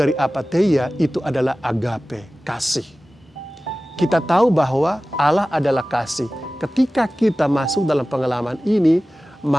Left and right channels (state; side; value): normal; both; correlation 0.96